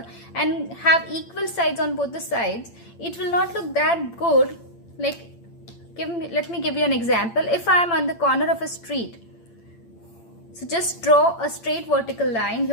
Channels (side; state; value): right; late; 8.8 ms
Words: and have equal sides on both the sides, it will not look that good. Like, let me give you an example. If I am on the corner of a street, so just draw a straight vertical line